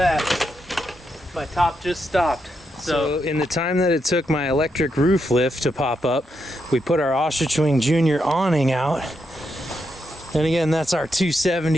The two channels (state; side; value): normal; both; correlation 0.82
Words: My top just stopped. So in the time that it took my electric roof lift to pop up, we put our Ostrich Wing Junior awning out. And again, that's our